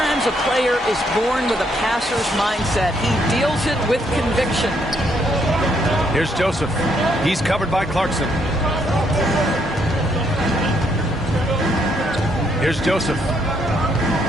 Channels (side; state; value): both; normal; correlation 0.72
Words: a player is born with a passer's mindset. He deals it with conviction. Here's Joseph. He's covered by Clarkson. Here's Joseph.